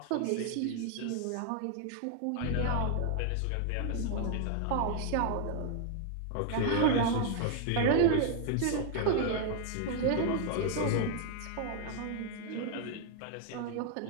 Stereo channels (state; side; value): different; both; correlation 0.00